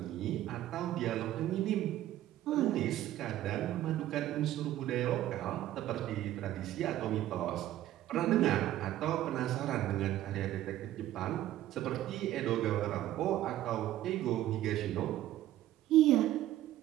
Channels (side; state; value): left; quieter; 13.7 dB